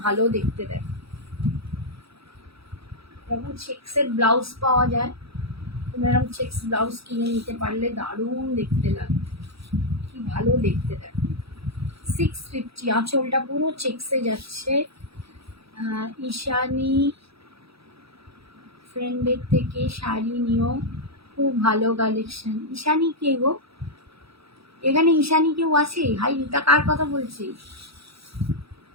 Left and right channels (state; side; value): late; left; 0.77 ms